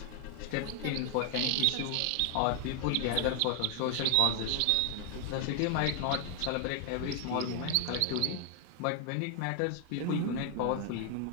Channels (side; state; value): both; different; correlation 0.00